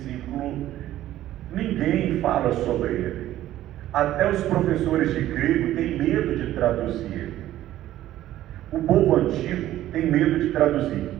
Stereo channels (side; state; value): left; quieter; 13.7 dB